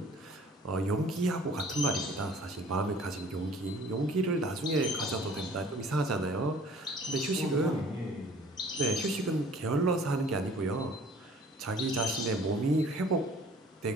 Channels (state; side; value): normal; both; correlation 0.52